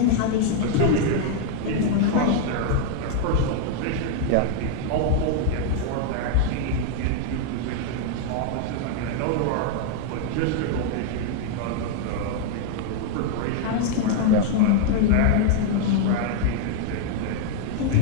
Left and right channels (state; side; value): different; both; correlation 0.00